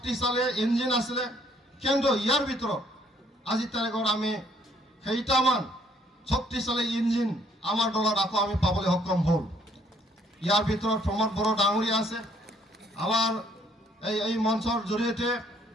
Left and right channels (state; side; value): normal; both; correlation 0.65